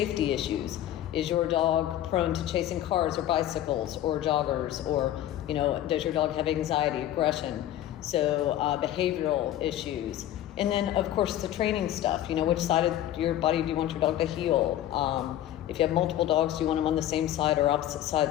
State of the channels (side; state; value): right; quieter; 12.5 dB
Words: issues. Is your dog prone to chasing cars or bicycles or joggers? Or, you know, does your dog have anxiety, aggression? So behavioral issues. And then, of course, the training stuff. You know, which side of your body do you want your dog to heel? If you have multiple dogs, do you want them on the same side or opposite